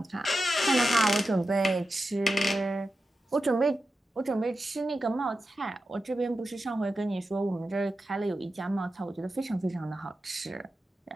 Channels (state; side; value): normal; both; correlation 0.91